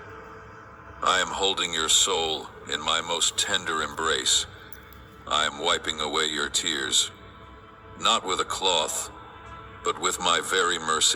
I am holding your soul in my most tender embrace. I am wiping away your tears, not with a cloth, but with my very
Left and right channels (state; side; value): identical; both; correlation 1.00